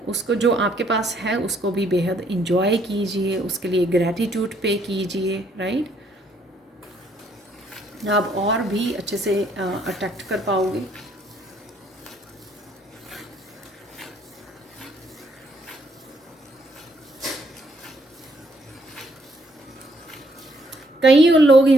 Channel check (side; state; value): both; normal; correlation 0.68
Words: उसको जो आपके पास है उसको भी बेहद इंजॉय कीजिए, उसके लिए ग्रैटिट्यूड पे कीजिए, राइट। आप और भी अच्छे से अट्रैक्ट कर पाओगे। कई लोग